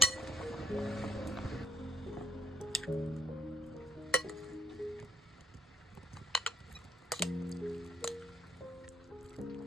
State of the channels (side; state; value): both; normal; correlation 0.72